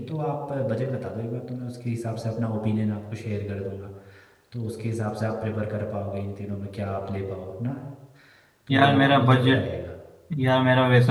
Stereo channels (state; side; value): identical; both; correlation 1.00